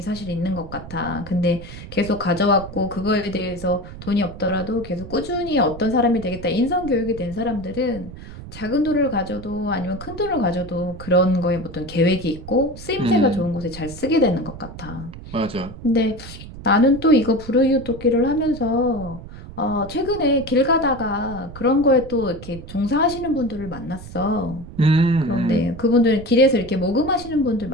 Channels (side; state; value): right; noise; rumble, 14 dB below the sound